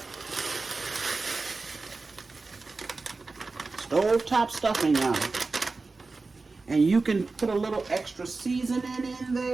Stove top stuffing, y'all. And you can put a little extra seasoning in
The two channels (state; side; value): quieter; left; 3.8 dB